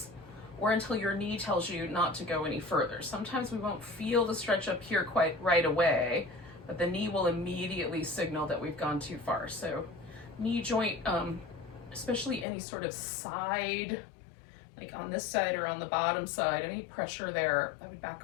or until your knee tells you not to go any further. Sometimes we won't feel the stretch up here quite right away, but the knee will immediately signal that we've gone too far. So knee joint, especially any sort of side, like on this side or on the bottom side, any pressure there, I would back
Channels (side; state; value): right; drops out; at 12.5 s